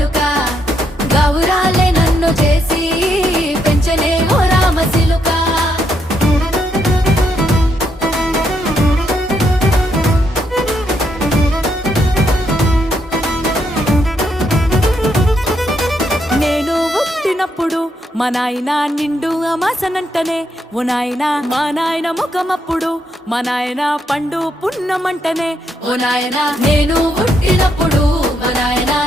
గౌరాలే నన్ను చేసి పెంచనే ఓ రామసిలుక నేను పుట్టినప్పుడు మా నాయన నిండు అమాసనంటనే ఓ నాయన మా నాయన ముఖమప్పుడు మా నాయన పండు పున్నమంటనే ఓ నాయన నేను పుట్టినప్పుడు మా నాయన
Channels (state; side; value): normal; both; correlation 0.77